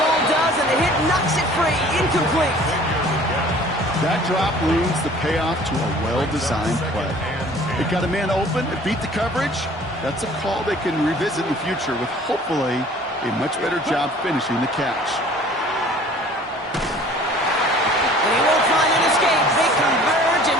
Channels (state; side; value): normal; both; correlation 0.50